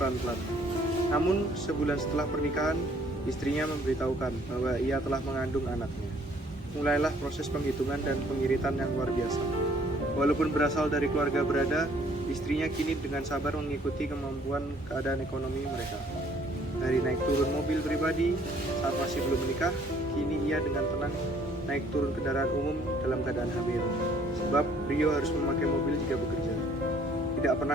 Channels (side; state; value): both; normal; correlation 0.61